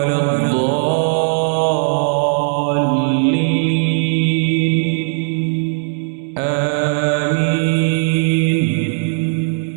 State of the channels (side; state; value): left; silent; 66 dB below the other